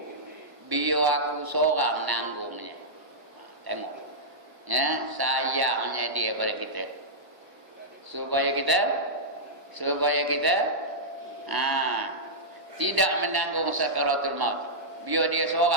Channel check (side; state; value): left; late; 1.0 ms